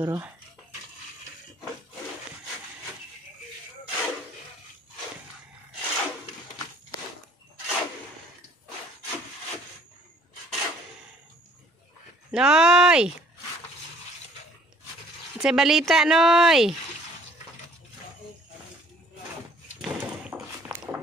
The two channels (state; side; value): normal; both; correlation 0.57